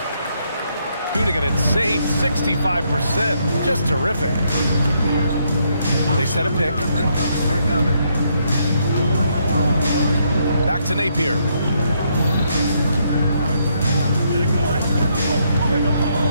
Shooting an insane 65%. Just terrific. They set a pick. Back to Napier.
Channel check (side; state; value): both; inverted; correlation -0.74